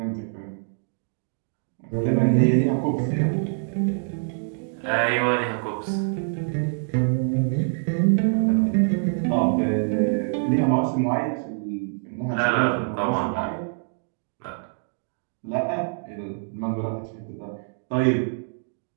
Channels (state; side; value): silent; left; digital silence